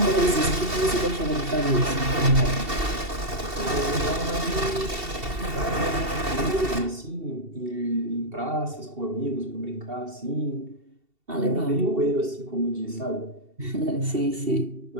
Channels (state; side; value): late; left; 2.7 ms